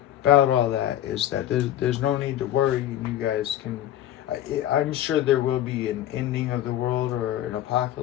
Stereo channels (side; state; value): right; quieter; 12.3 dB